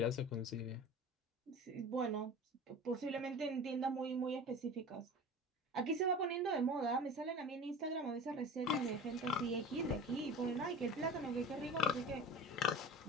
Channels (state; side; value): normal; both; correlation 0.36